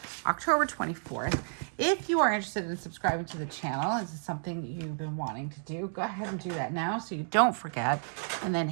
October 24th. If you are interested in subscribing to the channel, this is something you've been wanting to do, go ahead and do that now so you don't forget. And then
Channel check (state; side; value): silent; left; digital silence